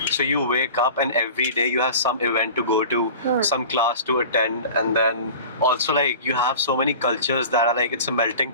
so you wake up and every day you have some event to go to, some class to attend, and then also you have so many cultures that are it's a melting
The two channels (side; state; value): both; inverted; correlation -0.38